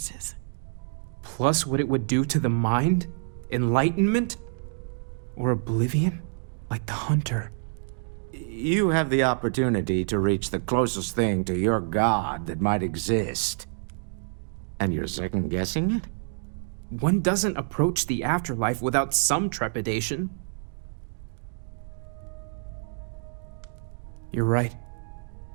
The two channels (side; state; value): left; silent; digital silence